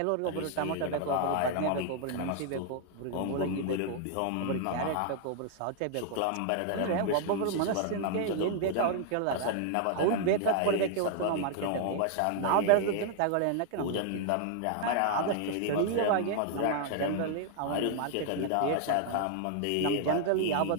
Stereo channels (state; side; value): different; both; correlation 0.00